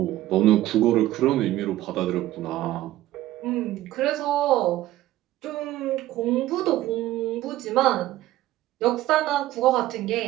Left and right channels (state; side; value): quieter; left; 15.0 dB